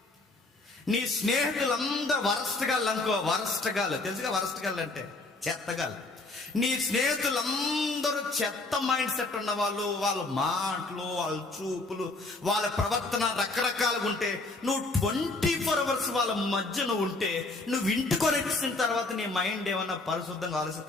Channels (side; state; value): right; quieter; 3.2 dB